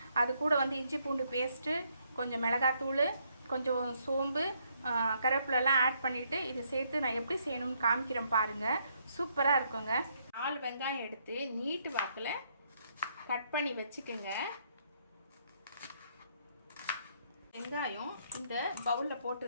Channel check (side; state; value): both; inverted; correlation -0.72